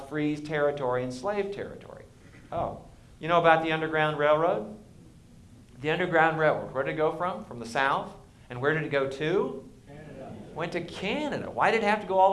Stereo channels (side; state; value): both; identical; correlation 1.00